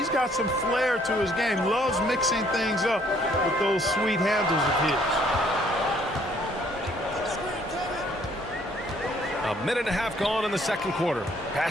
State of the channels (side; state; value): both; normal; correlation 0.63